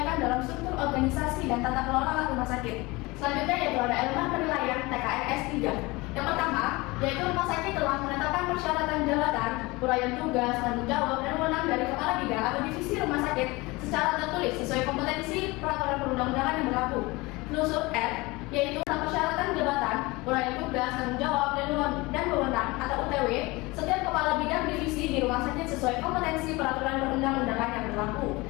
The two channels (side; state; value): right; quieter; 23.0 dB